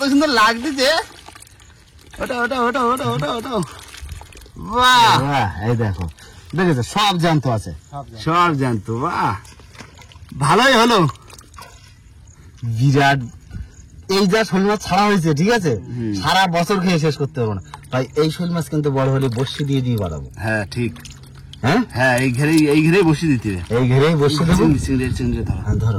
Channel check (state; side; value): identical; both; correlation 1.00